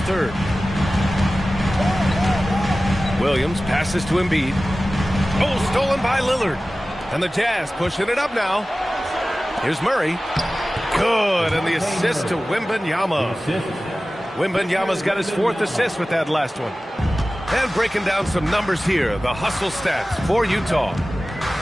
third. Williams passes to Embiid. Oh, stolen by Lillard. And the Jazz pushing it up now. Here's Murray. Good, and the assist to Wembanyama. Wembanyama's got his 4th assist with that last one. And breaking down some numbers here, the hustle stats for Utah.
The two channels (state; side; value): normal; both; correlation 0.96